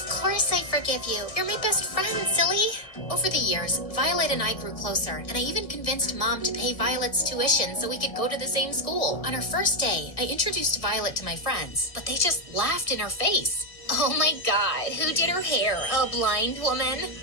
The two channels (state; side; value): late; right; 1.6 ms